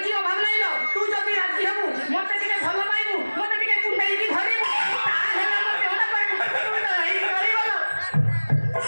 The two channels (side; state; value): both; inverted; correlation -1.00